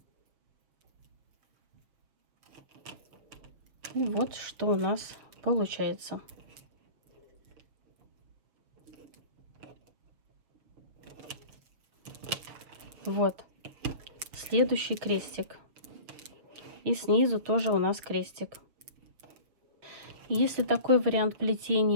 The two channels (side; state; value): left; late; 6.8 ms